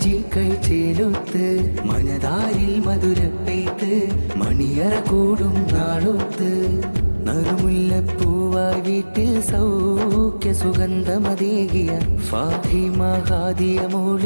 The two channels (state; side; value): inverted; both; correlation -1.00